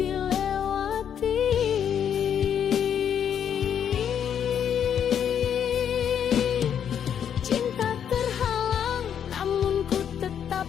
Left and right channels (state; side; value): quieter; right; 8.7 dB